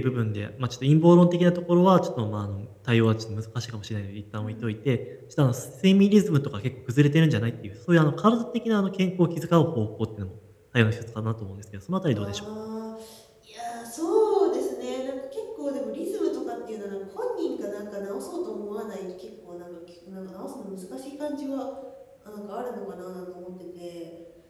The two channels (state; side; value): identical; both; correlation 1.00